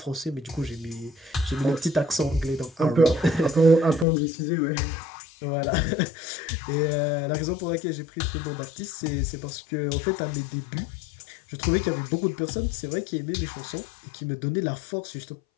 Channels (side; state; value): right; drops out; at 4.0 s